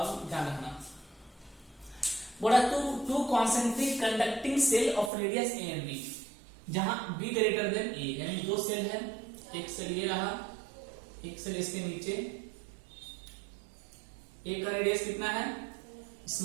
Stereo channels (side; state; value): left; drops out; at 5.1 s